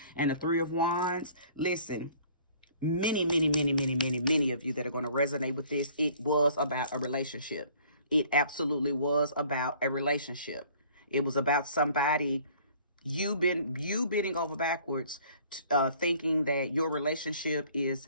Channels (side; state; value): both; inverted; correlation -0.55